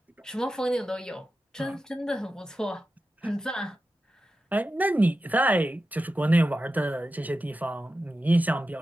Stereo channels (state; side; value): normal; both; correlation 0.92